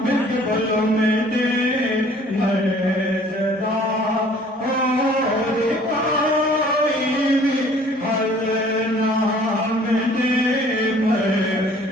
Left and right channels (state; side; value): normal; both; correlation 0.54